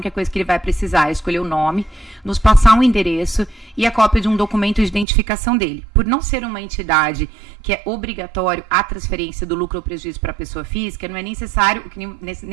coisa que ele vai precisar é escolher o nome, nos passar um endereço e a cópia de um documento de identificação dele. Por não ser uma entidade que é obrigatório a transferência do lucro ou prejuízo para a pessoa física, não é necessário,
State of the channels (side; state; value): left; drops out; at 5.1 s